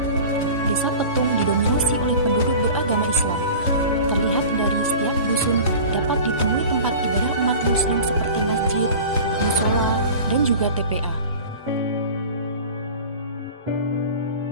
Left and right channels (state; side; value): inverted; both; correlation -0.37